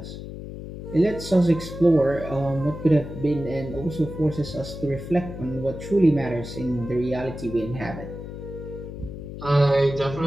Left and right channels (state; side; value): noise; left; hum, 10 dB below the sound